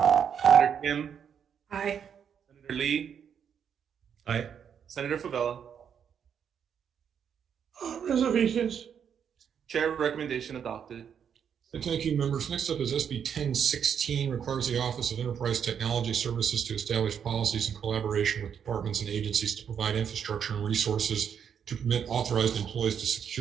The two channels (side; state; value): left; quieter; 7.9 dB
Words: Senator Kim? Aye. Senator Lee? Aye. Senator Favela? Reservations. Chair recommendation adopted. Thank you, members. Next up is SB 1016, requires the Office of Enterprise Technology Services to establish policies in collaboration with departments and agencies to provide infrastructure and resources to permit authorized employees to